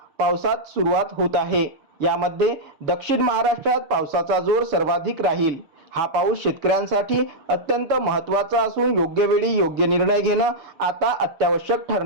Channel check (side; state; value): left; late; 6.6 ms